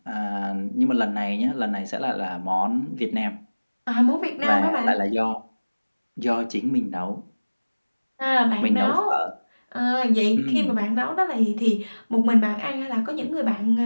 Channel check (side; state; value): both; inverted; correlation -1.00